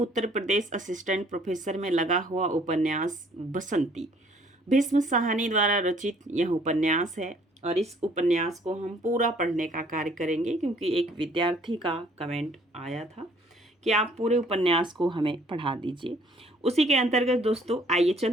प्रदेश असिस्टेंट प्रोफेसर में लगा हुआ उपन्यास बसंती। भीष्म साहनी द्वारा रचित यह उपन्यास है और इस उपन्यास को हम पूरा पढ़ने का कार्य करेंगे क्योंकि एक विद्यार्थी का कमेंट आया था कि आप पूरे उपन्यास को हमें पढ़ा दीजिए। उसी के अंतर्गत दोस्तों आइए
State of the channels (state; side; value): normal; both; correlation 0.60